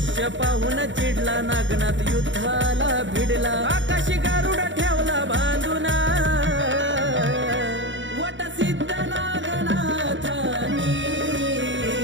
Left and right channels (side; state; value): left; late; 0.55 ms